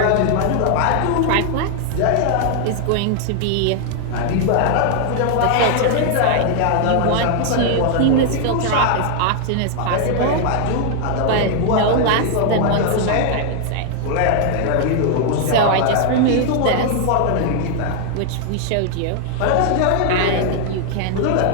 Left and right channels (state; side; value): different; both; correlation 0.00